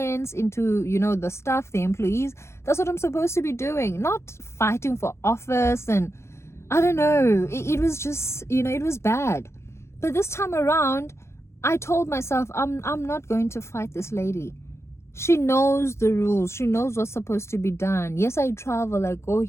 into, you know, the staff, the employees. That's what I'm supposed to be doing, not fighting for office. And I don't know, it was just, you know, it was bad. But this time around, I told myself, I'm not going to fight this lady. She knows the rules. She knows what's supposed to be done. Yes, I travel, I go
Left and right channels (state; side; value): late; right; 0.13 ms